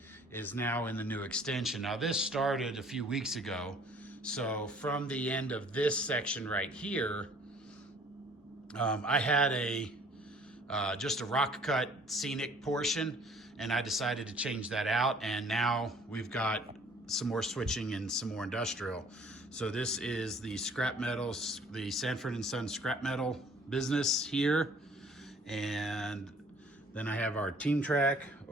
is now in the new extension. Now this started a few weeks ago, so from the end of this section right here, I had just a rock cut scenic portion, and I decided to change that out, and now we've got some more switching and some more industrial. So this is the scrap metals, the Sanford & Son scrap metal business here. And then I have our team track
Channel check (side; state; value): both; normal; correlation 0.56